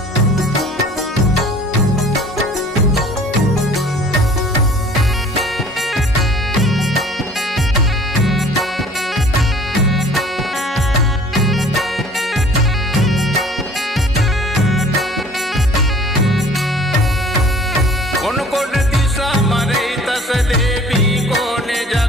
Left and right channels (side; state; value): both; normal; correlation 0.51